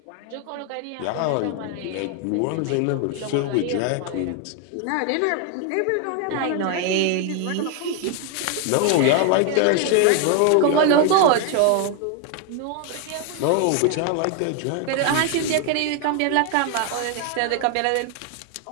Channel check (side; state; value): both; different; correlation 0.01